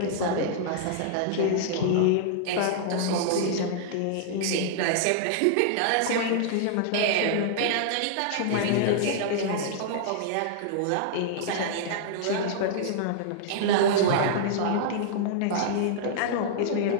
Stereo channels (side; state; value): both; different; correlation -0.01